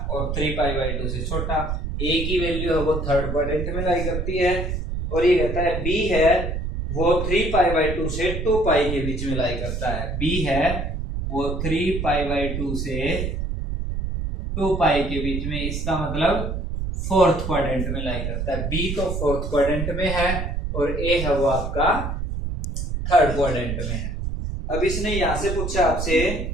और 3π/2 से छोटा। A की वैल्यू है वो थर्ड क्वाड्रेंट में लाई करती है, और ये कहता है B है वो 3π/2 से 2π के बीच में लाई करता है, B है वो 3π/2 से 2π के बीच में, इसका मतलब फोर्थ क्वाड्रेंट में लाई करता है। B तो फोर्थ क्वाड्रेंट में है और A है वो आपका थर्ड क्वाड्रेंट में है। अब इसने यहां से पूछा आपसे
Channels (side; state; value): right; noise; rumble, 3 dB below the sound